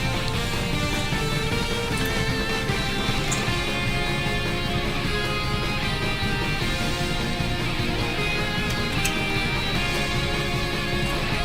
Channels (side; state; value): both; identical; correlation 1.00